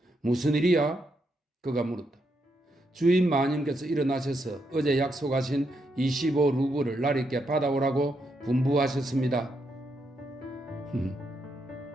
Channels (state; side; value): normal; both; correlation 0.80